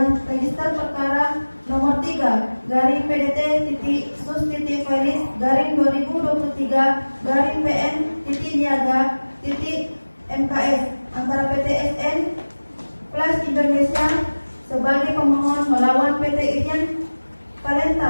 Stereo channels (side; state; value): both; inverted; correlation -1.00